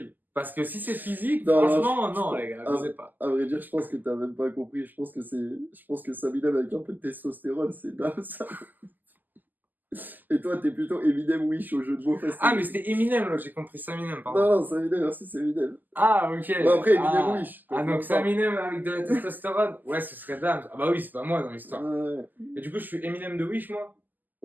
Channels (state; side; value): late; left; 0.086 ms